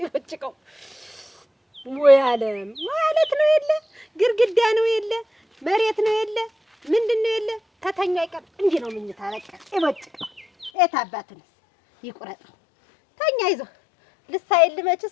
ይወጭቀው ወይ ዓለም ማለት ነው። የለ ግርግዳ ነው፣ የለ መሬት ነው፣ የለ ምንድን ነው፣ የለ ተተኛ አይቀር እንዲህ ነው ምኝታ በቃ ይወጭቀው። የት አባቱንስ ይቁረጠው። ተኛ ይዞ ልሳይል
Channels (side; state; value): right; drops out; at 10.7 s